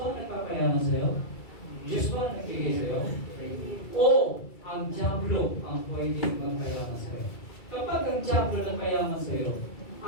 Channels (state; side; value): late; right; 2.3 ms